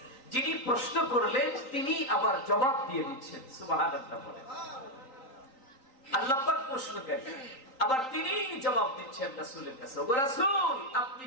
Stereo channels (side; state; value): right; late; 3.8 ms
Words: যিনি প্রশ্ন করলেন তিনি আবার জবাব দিয়ে দিচ্ছেন। সুবহানাল্লাহ বলেন। আল্লাহ পাক প্রশ্নকারী, আবার তিনি জবাব দিচ্ছেন রাসূলের কাছে। ওগো রাসূল, আপনি